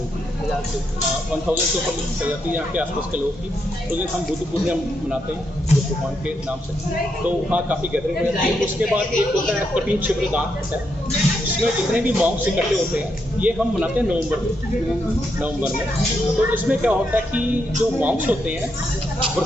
1000 से 1000 से ऊपर चल जाती है यहाँ के आसपास के लोग की। तो दिन हम बुद्ध पूर्णिमा मनाते हैं बुद्ध भगवान के नाम से। तो वहाँ काफ़ी गैदरिंग हो जाती है। उसके बाद एक होता है कठिन शिविर दान होता है, जिसमें जितने भी मॉन्क्स इकट्ठे होते हैं, ये हम मनाते हैं नवंबर में। तो इसमें क्या होता है कि जो मॉन्क्स होते हैं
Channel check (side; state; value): both; normal; correlation 0.80